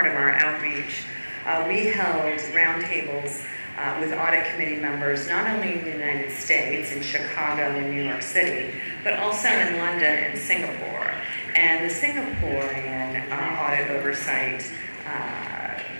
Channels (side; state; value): both; inverted; correlation -1.00